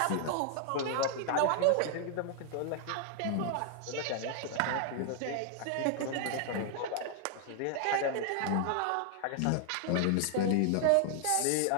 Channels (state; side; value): different; both; correlation 0.00